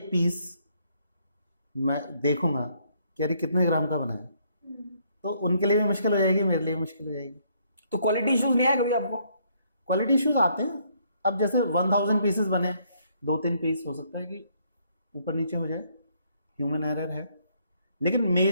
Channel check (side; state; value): both; inverted; correlation -0.68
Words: पीस मैं देखूंगा कि अरे कितने ग्राम का बना है, तो उनके लिए भी मुश्किल हो जाएगी, मेरे लिए भी मुश्किल हो जाएगी। तो क्वालिटी इश्यूज नहीं आया कभी आपको? क्वालिटी इश्यूज आते हैं। अब जैसे 1000 पीसेस बने, 2-3 पीस हो सकता है कि ऊपर नीचे हो जाए, ह्यूमन एरर है, लेकिन